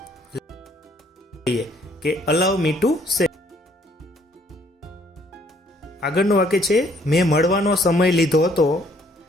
કે અલાવ મી ટુ સે. આગળનું વાક્ય છે, મેં મળવાનો સમય લીધો હતો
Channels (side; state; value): both; normal; correlation 0.64